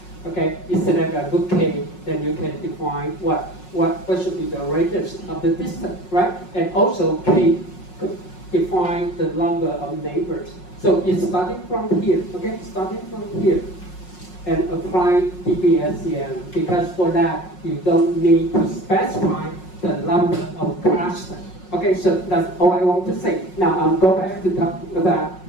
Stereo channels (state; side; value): late; right; 5.5 ms